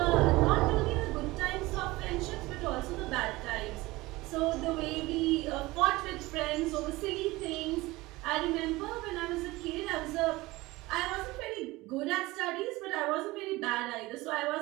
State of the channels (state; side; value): quieter; left; 20.2 dB